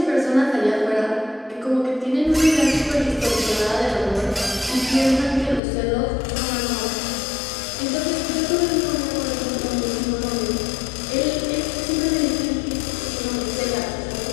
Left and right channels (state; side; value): drops out; right; at 5.6 s